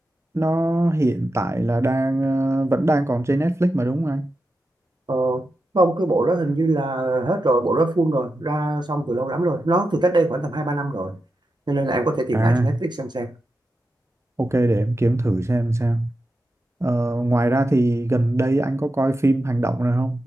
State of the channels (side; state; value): both; normal; correlation 0.89